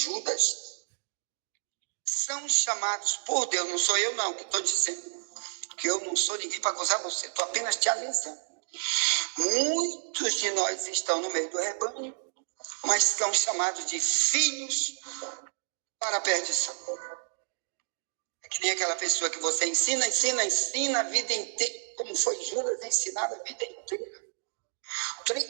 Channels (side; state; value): left; silent; digital silence